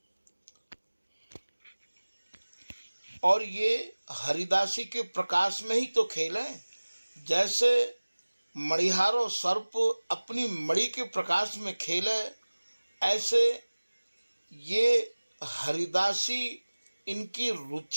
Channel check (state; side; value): inverted; both; correlation -1.00